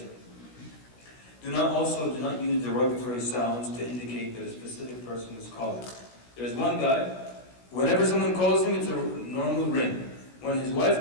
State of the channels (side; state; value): right; late; 16 ms